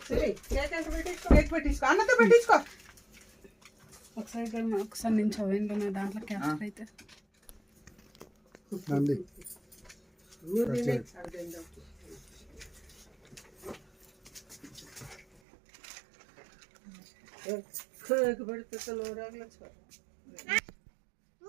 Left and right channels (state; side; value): drops out; left; at 15.2 s